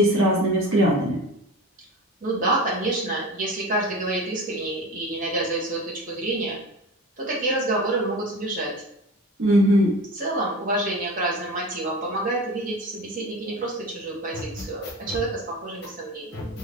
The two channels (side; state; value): both; normal; correlation 0.32